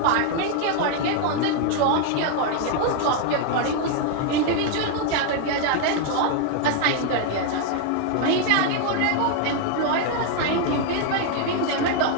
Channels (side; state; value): both; different; correlation 0.00